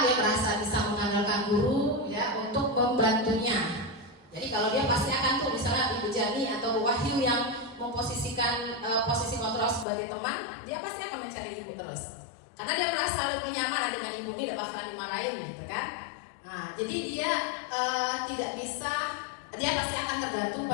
dia merasa bisa mengandalkan guru ya untuk membantunya. Jadi kalau dia pasti akan tuh misalnya Ibu Jani atau Wahyu yang memposisikan posisi kontrol sebagai teman, dia pasti akan mencari ibu terus. Karena dia merasa lebih nyaman dengan ibu, tidak bakalan dimarahin gitu kan. Nah, jadi dia tidak bisa, dia pasti akan tergantung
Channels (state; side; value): drops out; right; at 9.9 s